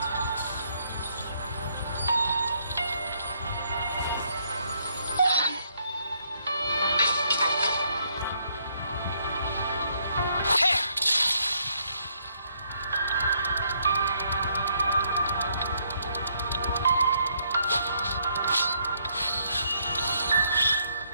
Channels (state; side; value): inverted; both; correlation -0.71